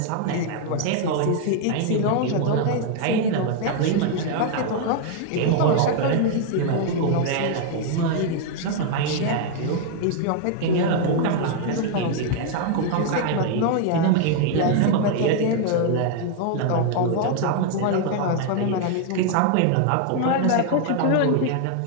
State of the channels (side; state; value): both; different; correlation 0.00